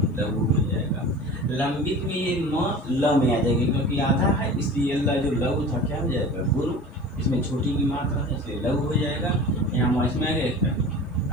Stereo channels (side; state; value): both; normal; correlation 0.38